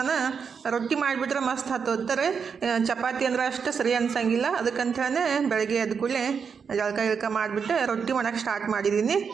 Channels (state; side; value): quieter; left; 6.2 dB